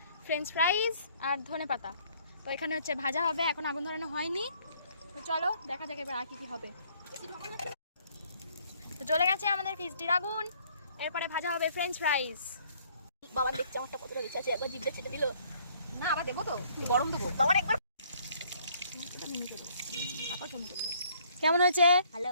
ফ্রেঞ্চ ফ্রাইজ আর ধনেপাতা। তো এখানে হচ্ছে ভাজা হবে, এখন আগুন ধরানো হয়নি। তো চলো দেখা যাক এবার আর কি কি হবে। তো চলে গেছে আমাদের ফিস্টির আগুন, এরপরে ভাজা হবে ফ্রেঞ্চ ফ্রাইজ। বাবা দেখছে আমারটা কতটা বেশি আছে, একবার জিভে ছেড়ে দিল। না আবার দেবো, তো গরম দেবো। বাবার একবার কেমন হয়েছে?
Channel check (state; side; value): inverted; both; correlation -0.63